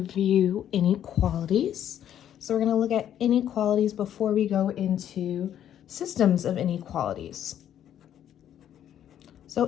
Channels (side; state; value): right; quieter; 10.4 dB